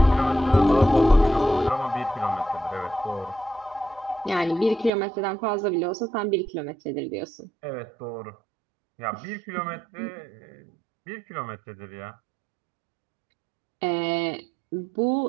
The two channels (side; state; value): left; drops out; at 4.9 s